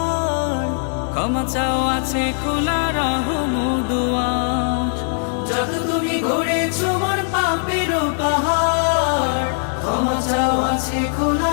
ক্ষমা চাও আছে খোলা রহম দুয়ার। যত তুমি গড়েছো মন পাপেরও পাহাড়, ক্ষমা চাও আছে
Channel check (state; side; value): silent; right; digital silence